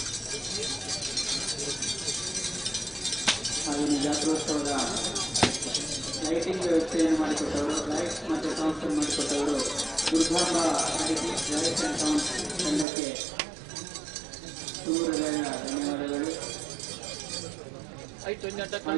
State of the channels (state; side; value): drops out; left; at 12.9 s